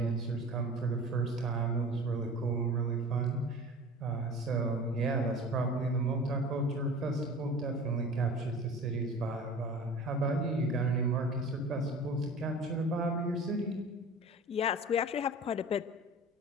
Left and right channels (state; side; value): normal; both; correlation 0.39